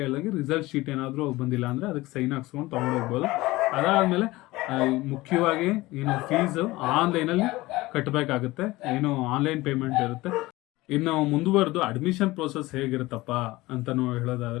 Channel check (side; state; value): right; quieter; 19.6 dB